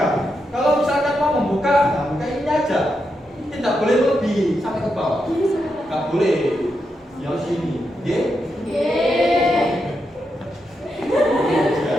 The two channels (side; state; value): both; normal; correlation 0.84